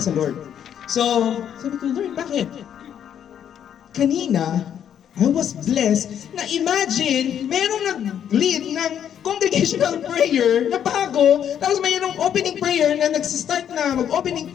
sa Lord. So, sabi ko, Lord, bakit? Kanina, I was blessed na imagine, merong nag-lead ng congregational prayer na bago, tapos mayroong opening prayer na nagsistart na mag-opening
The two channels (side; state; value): right; quieter; 9.3 dB